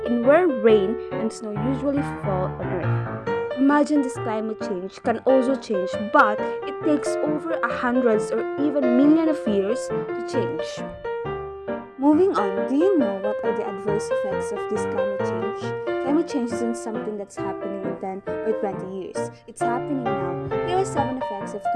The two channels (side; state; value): both; identical; correlation 1.00